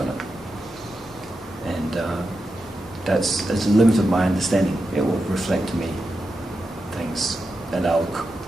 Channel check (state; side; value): normal; both; correlation 0.89